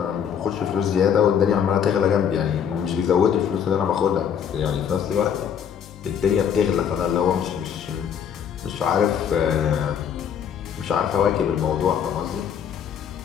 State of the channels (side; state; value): right; quieter; 8.2 dB